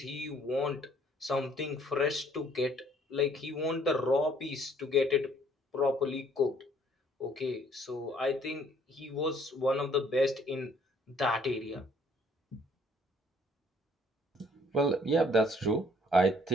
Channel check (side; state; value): both; normal; correlation 0.61